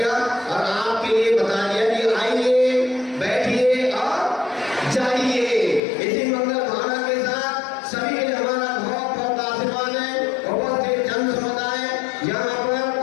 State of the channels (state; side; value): drops out; right; at 5.8 s